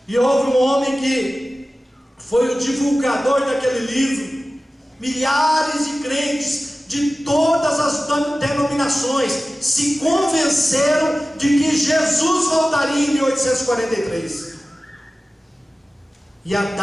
e houve um homem que foi o divulgador daquele livro. Milhares de crentes de todas as denominações se convenceram de que Jesus voltaria em 1843, e a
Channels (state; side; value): normal; both; correlation 0.96